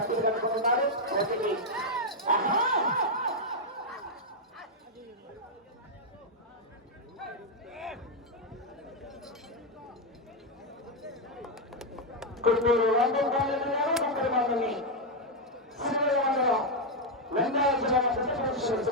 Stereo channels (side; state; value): both; normal; correlation 0.01